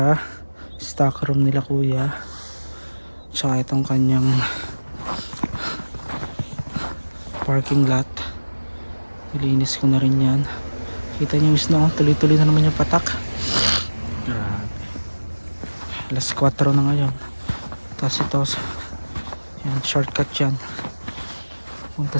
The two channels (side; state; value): both; inverted; correlation -1.00